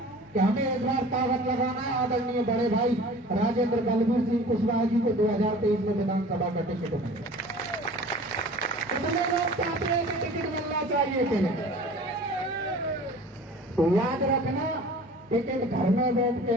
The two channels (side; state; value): both; normal; correlation 0.43